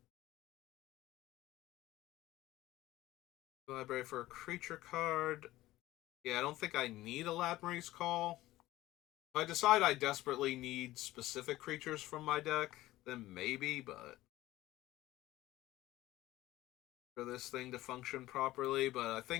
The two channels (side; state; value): right; quieter; 16.5 dB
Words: library for a creature card. Yeah, I don't think I need a Ladmery's Call. If I decide I desperately need specific creatures from my deck, then maybe, but for this thing to function properly, but I